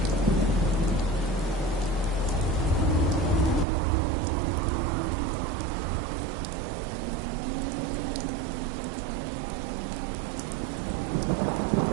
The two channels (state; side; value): drops out; left; at 3.7 s